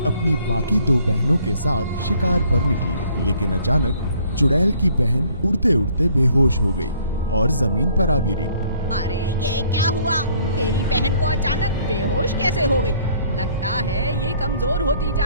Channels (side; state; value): both; inverted; correlation -0.61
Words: अपनी बाकी 2 बहनों के साथ शिकार पर निकली, लेकिन अचानक चुड़ैल की बहन उड़ते उड़ते बेहोश हो गई और जमीन पर आ गिरी। अरे ये क्या हुआ? मेरी बहन को अचानक बेहोश कैसे हो गई? लगता है ये कमजोर होती